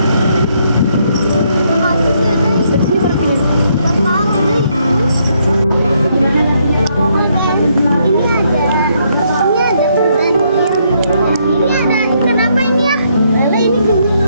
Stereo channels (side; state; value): both; inverted; correlation -0.73